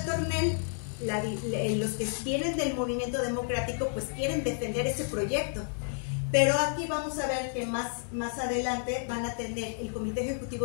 Tornel, los que vienen del movimiento democrático, pues quieren defender ese proyecto. Pero aquí vamos a ver que más adelante van a tener, el comité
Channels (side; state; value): right; silent; 57 dB below the other